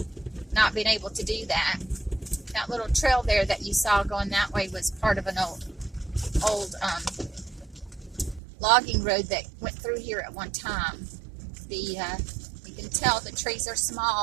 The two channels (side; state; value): left; drops out; at 8.4 s